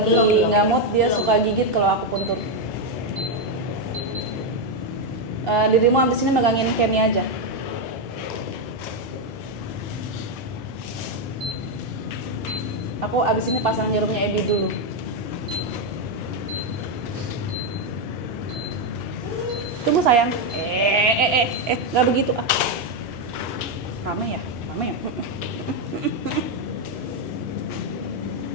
nggak mood dia suka gigit kalau aku puntur. Dirimu abis ini megangin Kenny aja. Aku abis ini pasang jarumnya Ebi dulu. Tunggu sayang. Nggak begitu ah. Rame ya. Nah.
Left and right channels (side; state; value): both; normal; correlation 0.04